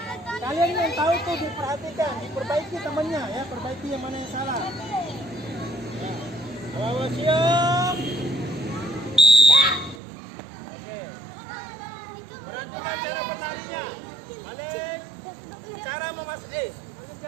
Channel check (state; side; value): drops out; left; at 10.0 s